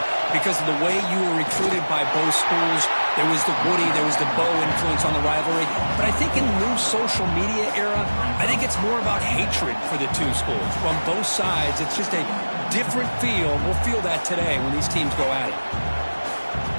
because of the way you were recruited by both schools. There was the Woody, there was the Bo influence on the rivalry. But I think in the new social media era, I think it's more about hatred for the two schools. From both sides, it's just a different feel. We'll feel that today when these teams go at it.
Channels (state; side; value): inverted; both; correlation -1.00